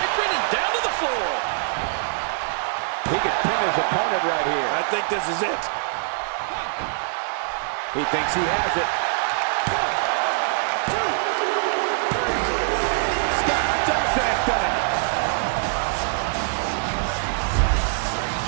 and down to the floor. He could pin his opponent right here. I think this is it. He thinks he has it. Scott Dawson has done it.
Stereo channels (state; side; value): silent; left; 61 dB below the other